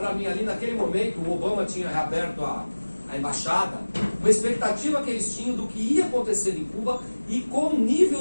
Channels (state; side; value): inverted; both; correlation -1.00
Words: mim ali naquele momento, o Obama tinha reaberto a embaixada, uma expectativa que eles tinham do que ia acontecer em Cuba, e com um